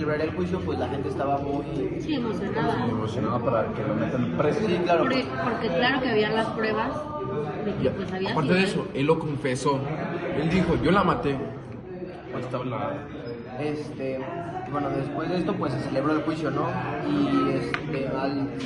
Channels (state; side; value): identical; both; correlation 1.00